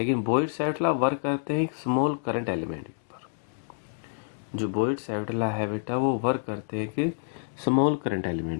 बॉयड-सैवरेट लॉ वर्क करते हैं एक स्मॉल करंट एलिमेंट के ऊपर। जो बॉयड-सैवरेट लॉ है बेटा, वो वर्क करते हैं कि स्मॉल करंट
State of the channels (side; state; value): right; silent; digital silence